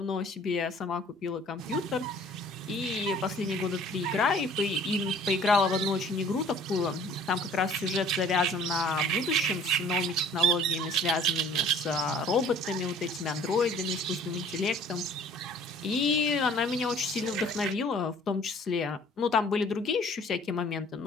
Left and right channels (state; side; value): normal; both; correlation 0.52